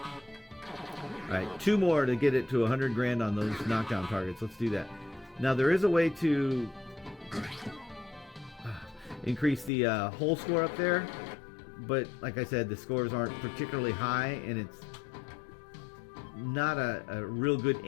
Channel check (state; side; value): drops out; right; at 9.7 s